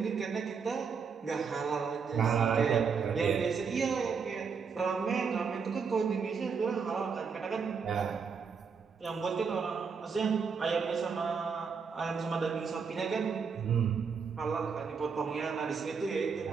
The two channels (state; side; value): quieter; left; 5.8 dB